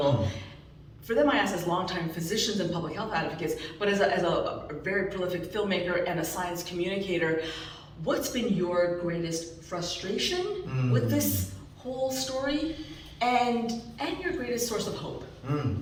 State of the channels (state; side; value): identical; both; correlation 1.00